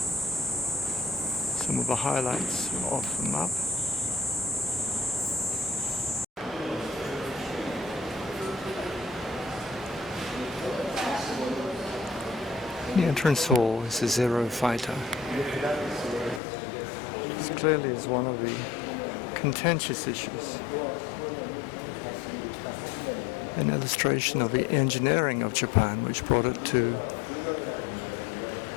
Some of the highlights of the map. The entrance hall is a Zero fighter. This clearly is one of the contentious issues. An illustration of the engineering of Japan, which brought it to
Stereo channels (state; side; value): drops out; right; at 16.4 s